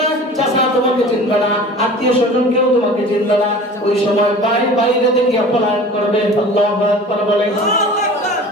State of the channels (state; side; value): normal; both; correlation 0.41